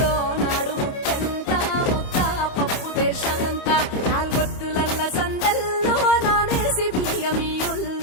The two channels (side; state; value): right; late; 28 ms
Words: నాడు ముత్తెంత ముద్ద పప్పు దేశంత నాలుగొత్తులల్ల సందెల్లో నానేసి